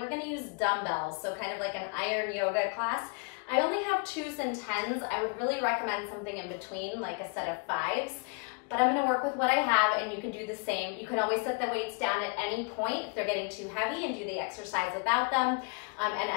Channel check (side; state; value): right; quieter; 34.3 dB